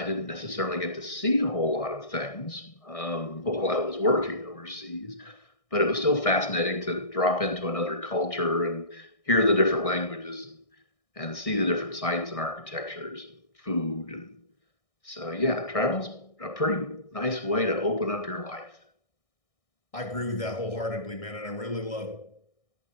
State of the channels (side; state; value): right; late; 1.6 ms